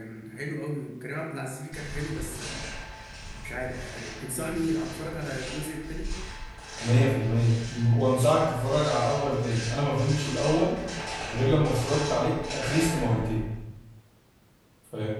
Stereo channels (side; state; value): both; identical; correlation 1.00